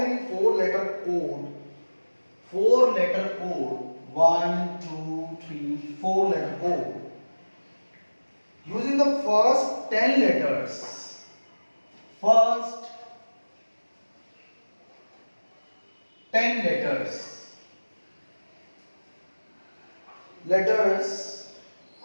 four-letter code? Four-letter code. 1, 2, 3. Four-letter code. Using the first 10 letters. First 10 letters. Letters,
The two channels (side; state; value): both; inverted; correlation -1.00